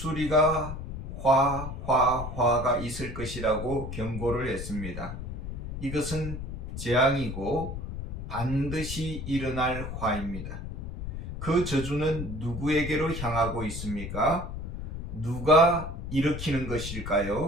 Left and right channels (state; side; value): noise; left; rumble, 7 dB below the sound